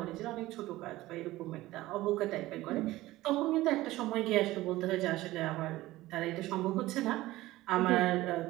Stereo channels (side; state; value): left; quieter; 17.4 dB